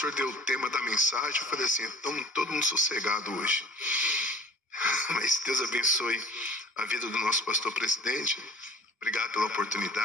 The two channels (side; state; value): both; normal; correlation 0.46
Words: deu o tema da mensagem, eu falei assim, então todo mundo sossegado hoje. Mas Deus abençoe a vida do nosso pastor presidente. Obrigado pela